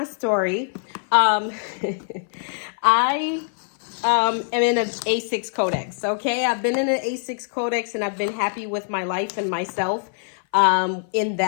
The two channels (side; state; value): right; silent; 58 dB below the other